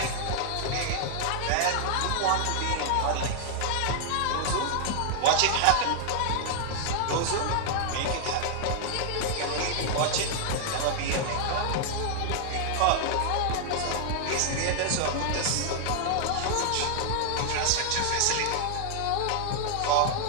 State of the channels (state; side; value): different; both; correlation 0.00